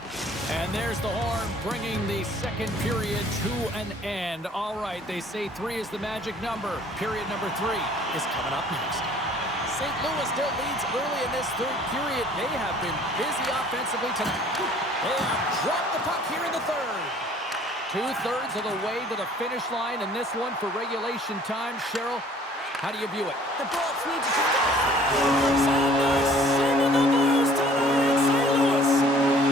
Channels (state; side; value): normal; both; correlation 0.55